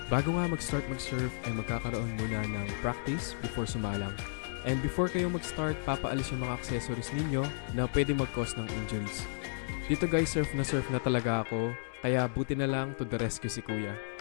Bago nga mag-start mag-surf ay magkakaroon muna ng practice before sumalang. And before kayo mag-start, papaalis yung mga accessories ninyo na pwede mag-cause ng injuries. Dito guys, surf na talaga ako, kaya buti na lang to the rescue si Kuya.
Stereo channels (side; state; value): right; silent; digital silence